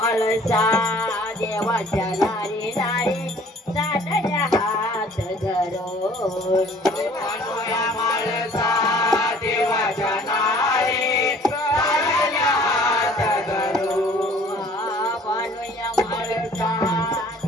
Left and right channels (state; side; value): normal; both; correlation 0.53